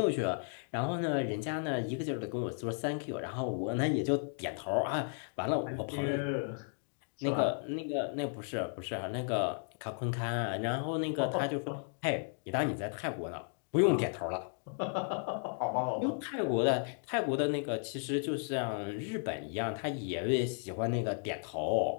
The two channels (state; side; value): silent; right; 55 dB below the other